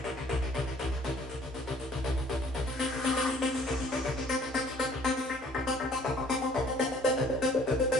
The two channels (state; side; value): normal; both; correlation 0.57